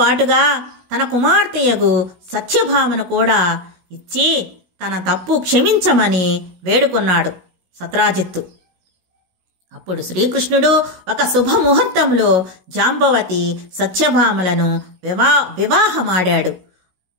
తన కుమార్తెయగు సత్యభామను కూడా ఇచ్చి తన తప్పు క్షమించమని వేడుకున్నాడు సత్రాజిత్తు. అప్పుడు శ్రీకృష్ణుడు ఒక శుభముహూర్తంలో జాంబవతి సత్యభామలను వివాహమాడాడు.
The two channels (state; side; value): late; left; 16 ms